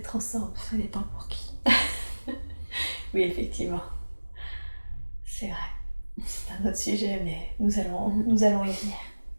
ensemble. Ça dépend pour qui. Oui, effectivement. C'est vrai. C'est un autre sujet, mais nous allons y venir.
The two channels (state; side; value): inverted; both; correlation -1.00